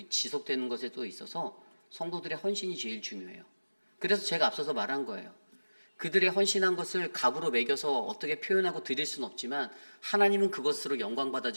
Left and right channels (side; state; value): both; inverted; correlation -1.00